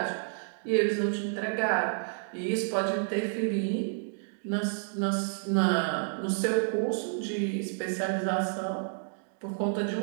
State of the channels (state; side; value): silent; left; digital silence